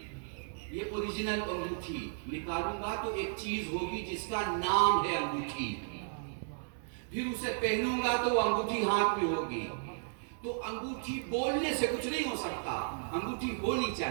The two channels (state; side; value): silent; left; 55 dB below the other